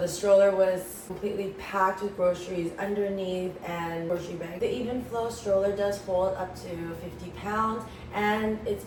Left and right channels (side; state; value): both; identical; correlation 1.00